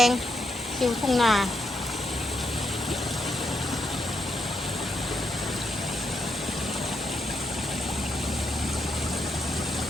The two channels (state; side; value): normal; both; correlation 0.81